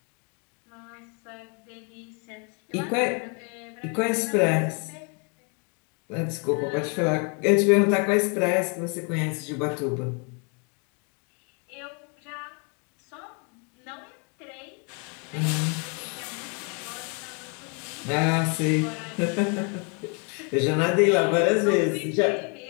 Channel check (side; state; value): right; quieter; 36.2 dB